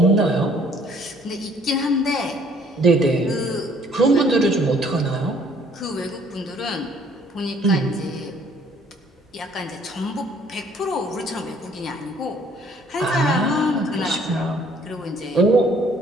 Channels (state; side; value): normal; both; correlation 0.59